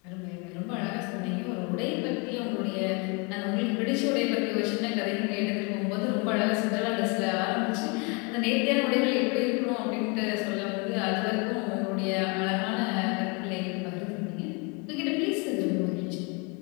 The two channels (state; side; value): quieter; right; 31.0 dB